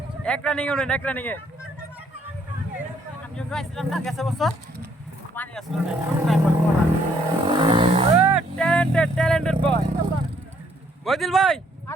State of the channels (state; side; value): normal; both; correlation 0.67